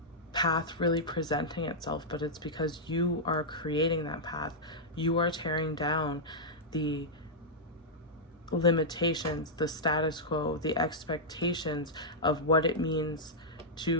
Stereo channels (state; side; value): normal; both; correlation -0.08